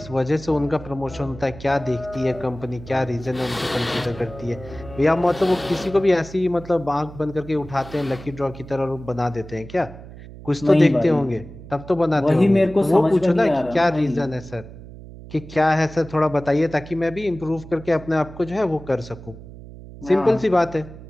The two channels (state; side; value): noise; right; hum, 16 dB below the sound